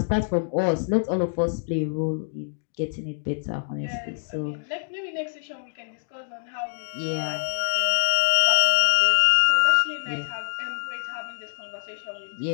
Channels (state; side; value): silent; right; digital silence